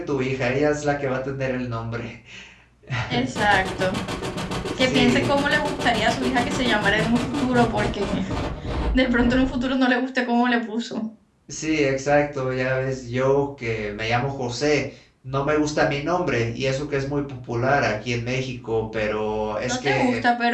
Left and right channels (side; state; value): both; identical; correlation 1.00